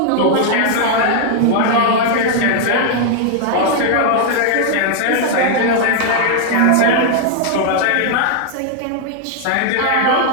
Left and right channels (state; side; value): different; both; correlation 0.00